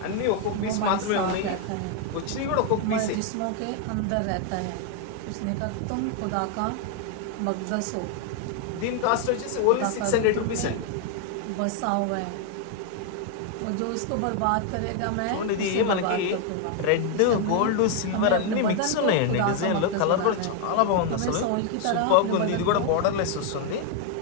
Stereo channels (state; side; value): different; both; correlation 0.00